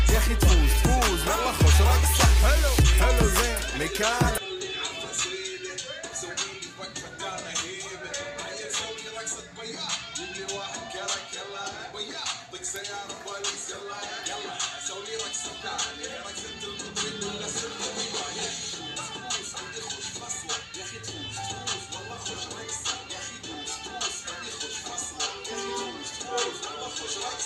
يا اخي تفوز تفوز والله خوش رقصة حلو حلو زين مكان سيارة بوليس يلا يلا سوي رقصة ثانية رقصة المطرب ولا سلطة بيباية دوس عندي خوش فصلة يا أخي دوس دوس والله خوش رقصة يا أخي دوس دوس عندي خوش فصلة يا أخي دوس دوس والله خوش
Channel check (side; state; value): both; identical; correlation 1.00